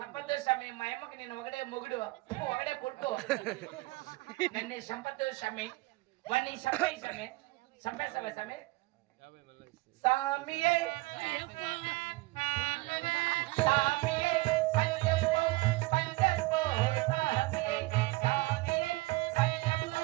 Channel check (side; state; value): left; quieter; 21.8 dB